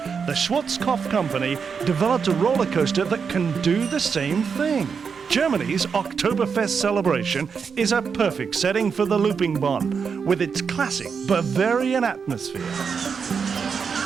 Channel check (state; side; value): quieter; left; 6.0 dB